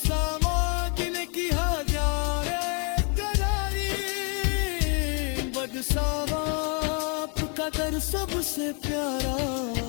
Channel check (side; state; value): right; quieter; 36.6 dB